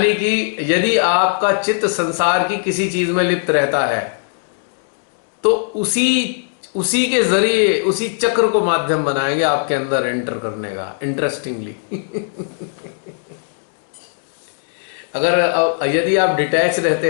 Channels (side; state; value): right; silent; 67 dB below the other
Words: कि यदि आपका चित्त संसार की किसी चीज में लिप्त रहता है तो उसी के जरिए उसी चक्र को माध्यम बनाएंगे आपके अंदर एंटर करने का। इंटरेस्टिंगली यदि आप डिटैच